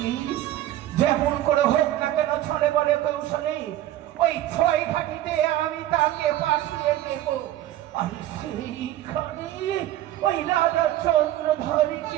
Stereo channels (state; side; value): quieter; left; 13.8 dB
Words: যেমন করে হোক না কেন ছলে বলে কৌশলে ওই 6 ঘাটিতে আমি তাকে পাঠিয়ে দেব। আর সেইখানে ওই রাজা